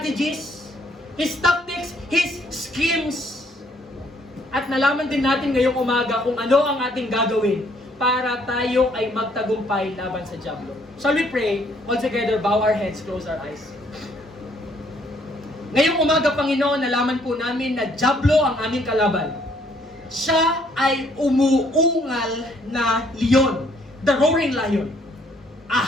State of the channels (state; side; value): normal; both; correlation 0.66